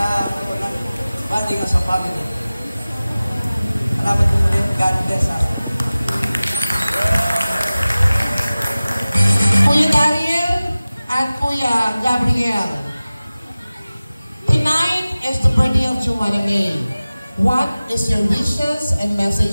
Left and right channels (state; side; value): inverted; both; correlation -0.97